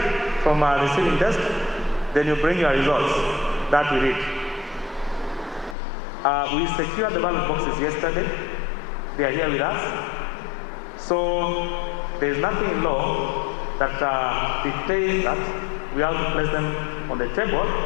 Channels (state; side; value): drops out; right; at 5.8 s